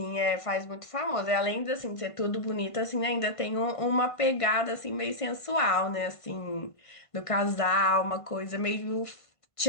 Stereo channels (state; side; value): late; right; 1.5 ms